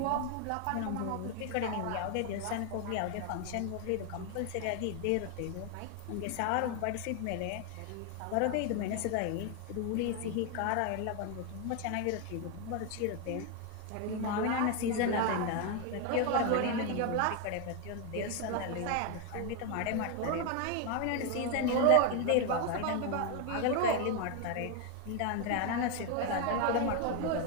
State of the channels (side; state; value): both; different; correlation 0.01